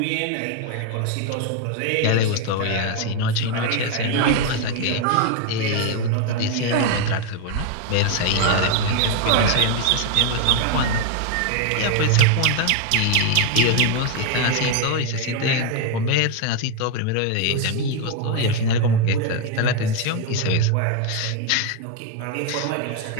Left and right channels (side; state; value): both; different; correlation 0.01